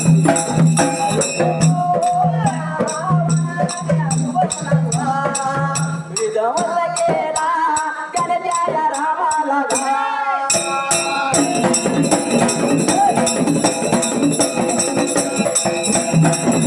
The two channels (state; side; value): identical; both; correlation 1.00